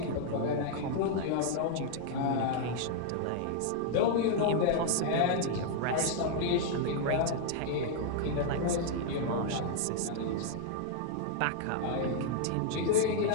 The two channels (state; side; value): different; both; correlation -0.01